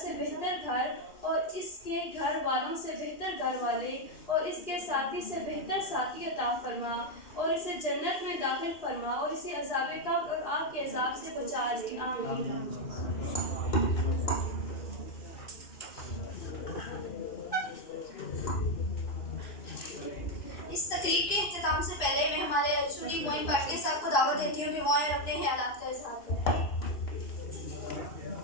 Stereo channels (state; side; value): late; right; 2.9 ms